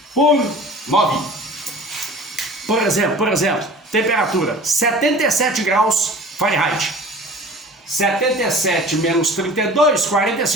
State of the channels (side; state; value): both; normal; correlation 0.42